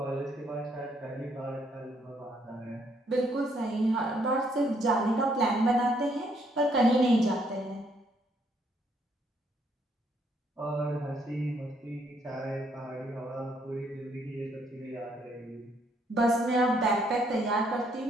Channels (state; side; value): normal; both; correlation 0.70